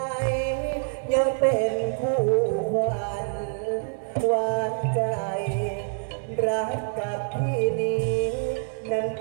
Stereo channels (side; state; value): left; silent; digital silence